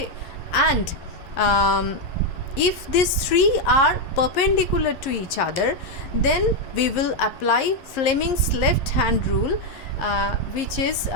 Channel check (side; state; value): right; late; 11 ms